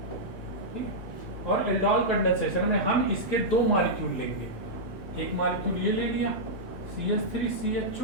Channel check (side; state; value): both; normal; correlation -0.09